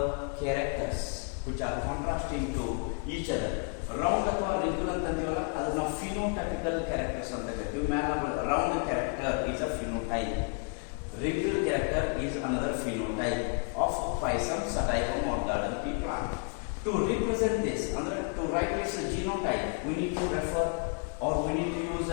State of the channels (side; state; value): right; quieter; 38.3 dB